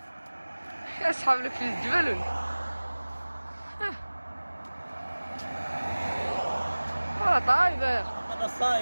يا اصحاب لك في الجبل طايبر. انا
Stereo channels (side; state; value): both; inverted; correlation -1.00